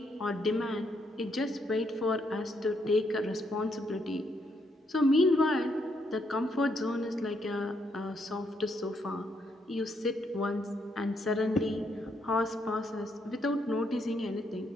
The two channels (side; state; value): both; normal; correlation 0.75